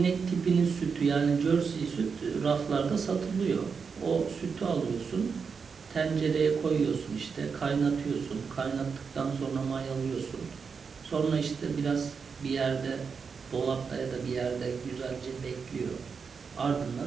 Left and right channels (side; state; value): left; quieter; 5.7 dB